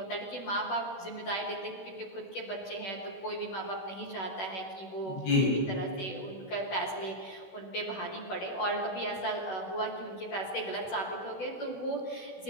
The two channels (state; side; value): late; right; 16 ms